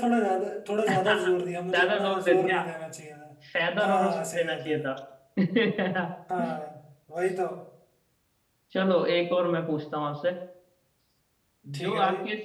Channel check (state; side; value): identical; both; correlation 1.00